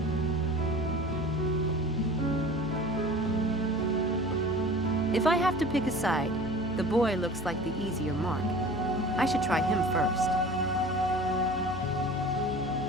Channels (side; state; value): left; noise; hum, 13 dB below the sound